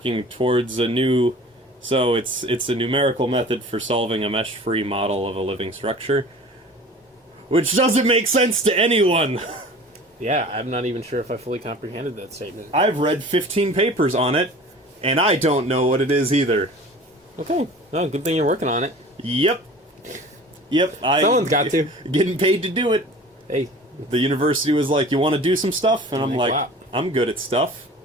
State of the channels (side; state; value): both; normal; correlation 0.42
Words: towards a new... So it's a numerical method for solving a mesh-free model of a living structure. Which doesn't make sense to anyone. Yeah, I'm not even sure if I fully comprehended that statement. I've read 15 papers on it, and I don't know what it is either. Okay. Well, good thing you're working on it. Yep. Someone's got to. Getting paid to do it. Hey. The university was like, you want to do some stuff? And I'm like, wow. I'm good at stuff.